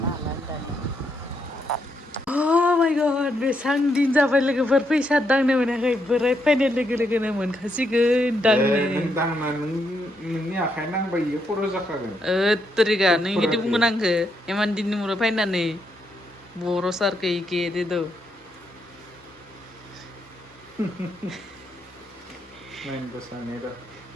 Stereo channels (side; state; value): both; normal; correlation 0.78